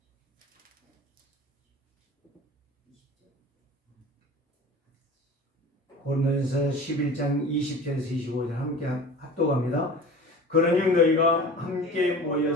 고린도전서 11장 20절에서 25절 함께 합독합니다. 그러니 너희가 함께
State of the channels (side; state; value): both; normal; correlation 0.38